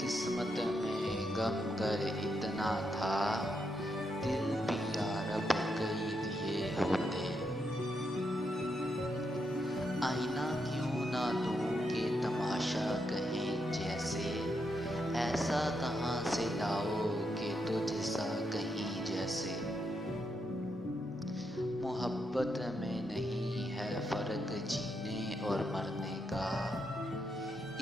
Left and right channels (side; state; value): both; normal; correlation 0.81